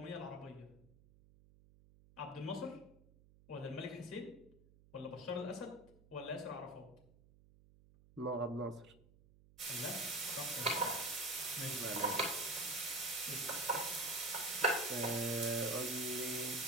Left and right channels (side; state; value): right; noise; hum, 25 dB below the sound